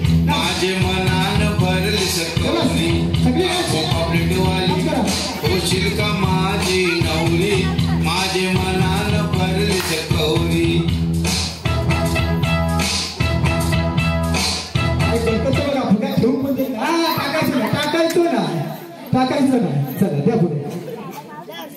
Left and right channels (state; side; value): identical; both; correlation 1.00